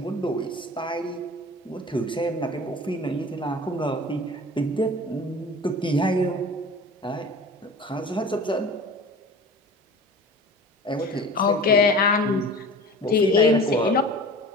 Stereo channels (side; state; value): both; normal; correlation 0.39